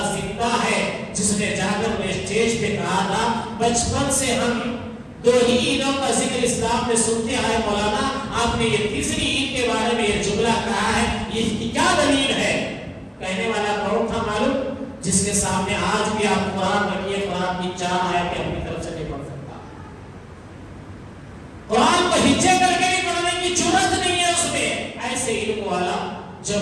زندہ ہے جس نے جا کر اسٹیج پہ کہا تھا بچپن سے ہم دو ہی عیدوں کا ذکر اسلام میں سنتے آئے، مولانا آپ نے یہ تیسری عید کے بارے میں یہ جملہ کہا ہے، یہ کیا دلیل ہے؟ کہنے والا کون تھا معلوم؟ جس کے سامنے آج بھی آپ قرآن رکھیے، قرآن کی 4 آیتیں اپنی طرف سے نہیں پڑھ سکتا، قرآن کو ہچے کر کے بھی پڑھنے کی جرات نہیں ہے اس میں۔ ایسے علم والا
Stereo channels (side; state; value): both; identical; correlation 1.00